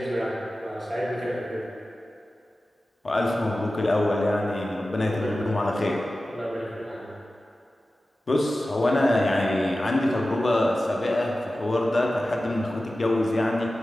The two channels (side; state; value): both; normal; correlation 0.95